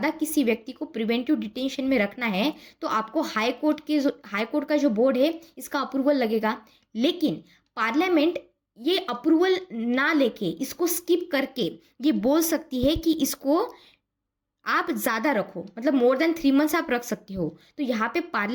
किसी व्यक्ति को प्रिवेंटिव डिटेंशन में रखना है तो आपको हाई कोर्ट का जो बोर्ड है इसका अप्रूवल लगेगा। लेकिन पार्लियामेंट ये अप्रूवल ना लेके इसको स्किप करके ये बोल सकती है कि इसको आप ज़्यादा रखो, मतलब मोर देन 3 मंथ्स आप रख सकते हो। तो यहाँ पे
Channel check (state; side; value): identical; both; correlation 1.00